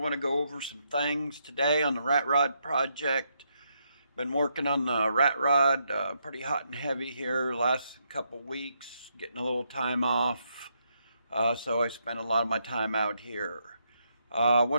to go over some things today on the rat rod project. Been working on the rat rod pretty hot and heavy here last couple weeks, getting a little time off. So I spent a lot of my time out here. I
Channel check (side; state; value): both; inverted; correlation -0.78